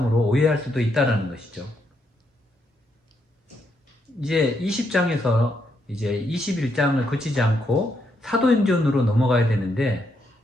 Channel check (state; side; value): normal; both; correlation 0.77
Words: 오해할 수도 있다는 것이죠. 이제 20장에서 이제 21장을 거치지 않고 사도행전으로 넘어가야 되는데